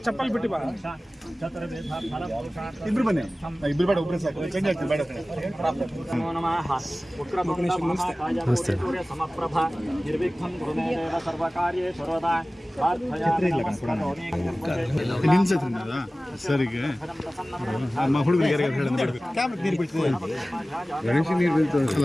ಚಪ್ಪಲ್ ಬಿಟ್ಟು ಬಾ ಇಬ್ರು ಬನ್ನಿ ಇಬ್ರು ಬೇಡ ಒಬ್ಬರೇ ಸಾಕು ಚೇಂಜ್ ಆಗ್ತದೆ ಬೇಡ ಸಮಪ್ರಭ ನಿರ್ವಿಘ್ನಂ ಗುರುಮೇವ ಸರ್ವಕಾರ್ಯೇ ಸರ್ವದಾ ಸರಿಗೆ ಹುಡುಗರಿಗೆ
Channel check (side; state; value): both; normal; correlation 0.97